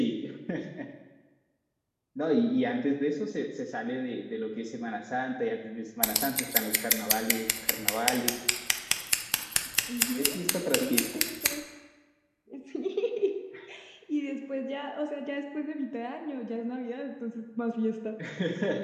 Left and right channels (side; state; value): both; identical; correlation 1.00